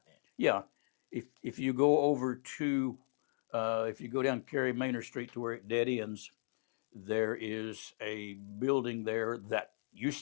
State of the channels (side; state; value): right; silent; digital silence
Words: that. yeah. If you go over to if you go down Cary Manor Street to where it dead ends, there is a building there that